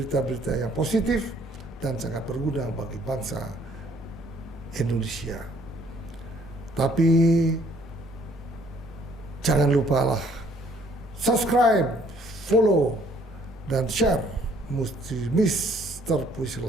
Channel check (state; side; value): normal; both; correlation 0.62